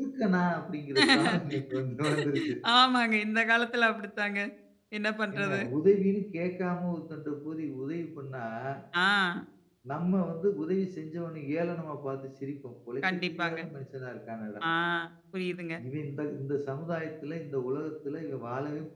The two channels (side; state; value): both; identical; correlation 1.00